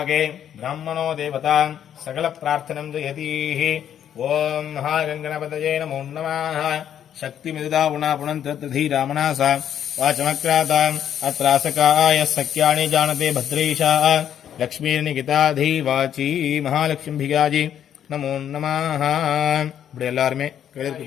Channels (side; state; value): right; quieter; 9.8 dB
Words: ब्राह्मणो देवता सकल प्रार्थनं जयतीः ओम महागणपतये नमो नमः शक्तिमिदुदा पुनन्तधीरामनासा वाचमक्राताम् अत्रासकाय सख्यानि जानते भद्रेशा लक्ष्मीर्निकिताधी वाची महालक्ष्मीभिगाजी नमो नमः இப்படி எல்லாருமே கையில